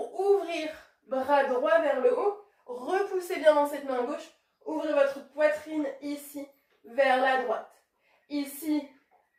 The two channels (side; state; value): both; identical; correlation 1.00